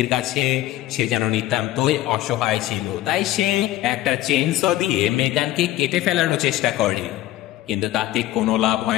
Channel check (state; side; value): quieter; right; 14.9 dB